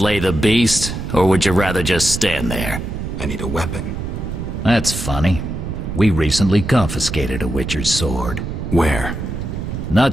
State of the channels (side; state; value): right; noise; rumble, 5 dB below the sound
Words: the beast, or would you rather just stand there? I need a weapon. That's funny. We recently confiscated a Witcher's sword. Where?